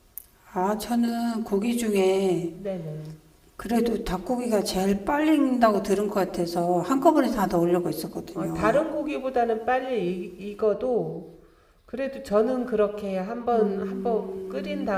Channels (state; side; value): identical; both; correlation 1.00